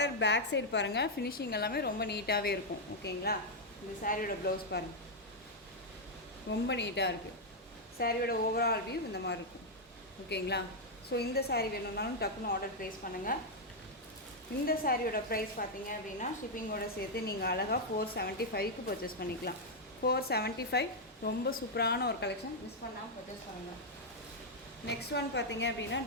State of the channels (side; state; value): both; normal; correlation -0.02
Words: பேக் சைடு பாருங்கள். ஃபினிஷிங் எல்லாமே ரொம்ப நீட்டாகவே இருக்கும். ஓகேங்களா. இந்த சாரியோட ப்ளவுஸ் பாருங்கள். ரொம்ப நீட்டாக இருக்குது. சாரியோட ஓவரால் வியூ இந்த மாதிரி இருக்கும். ஓகேங்களா. ஸோ இந்த சாரீ வேணும்னாலும் டக்குன்னு ஆர்டர் ப்ளேஸ் பண்ணுங்கள். இந்த சாரியோட ப்ரைஸ் பார்த்தீங்க அப்படின்னா ஷிப்பிங்கோட சேர்த்து நீங்கள் அழகாக 475க்கு பர்ச்சேஸ் பண்ணிக்கலாம். 475. ரொம்ப சூப்பரான ஒரு கலெக்ஷன். மிஸ் பண்ணாமல் பர்ச்சேஸ் பண்ணுங்கள். நெக்ஸ்ட் ஒன் பார்த்தீங்க அப்படின்னா